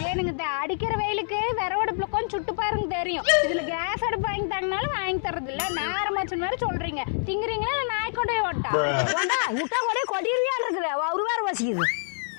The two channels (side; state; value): right; silent; 60 dB below the other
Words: ஏனுங்க இந்த அடிக்கிற வெயிலுக்கு விறவடுப்புல கொஞ்சம் சுட்டு பாருங்க தெரியும். இதுல கேஸ் அடுப்பு வாங்கி தரனாலும் வாங்கி தரது இல்ல. நேரமாச்சு மாதிரி சொல்றீங்க. திங்குறீங்களா இல்ல நாய் கொண்டே ஓட்டா? விட்டா கூட கொடியிருக்கான் இருக்குது. ஒரு வேற பசிக்குது.